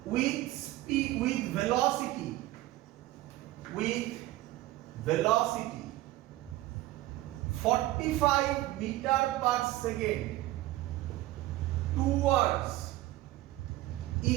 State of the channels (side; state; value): left; quieter; 16.7 dB